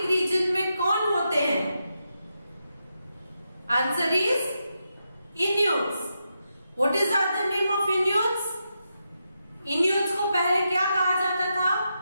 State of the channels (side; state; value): both; inverted; correlation -0.85